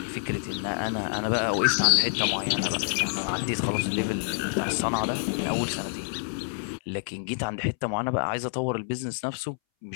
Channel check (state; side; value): silent; right; 60 dB below the other